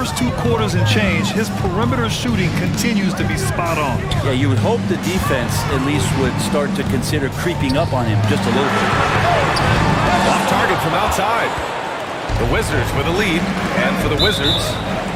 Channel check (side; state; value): both; identical; correlation 1.00